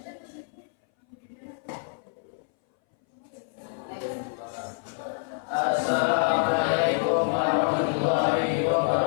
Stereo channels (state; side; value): silent; right; 60 dB below the other